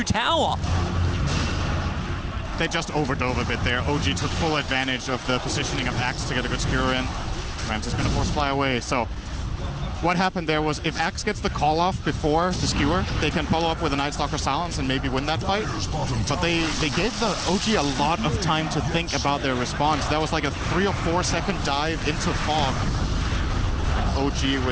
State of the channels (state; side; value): identical; both; correlation 1.00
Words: tower. They just overdove a bit there. OG took full advantage of the positioning of Axe to get a good skewer in. Rams is going to force fly away. So what happened there was if Axe gets the call off before the skewer, they can follow up with a Night Stalker Silence and maybe win that fight. But they gave the OG a lot of time to think about their response. That was like a 3 or 4 second dive into fog. OG